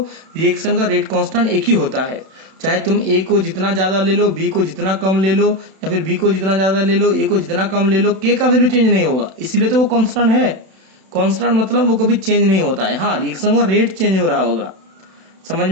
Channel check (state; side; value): late; left; 32 ms